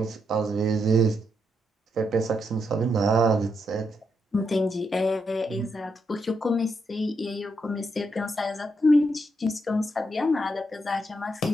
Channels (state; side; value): normal; both; correlation 0.80